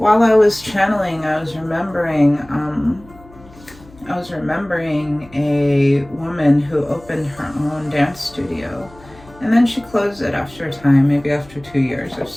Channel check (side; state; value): left; noise; hum, 23 dB below the sound